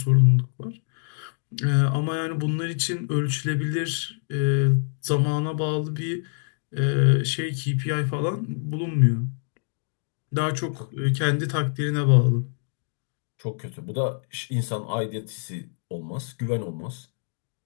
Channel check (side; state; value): right; silent; digital silence